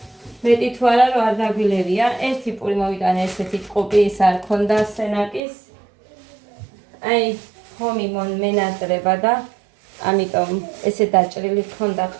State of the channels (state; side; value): drops out; left; at 5.4 s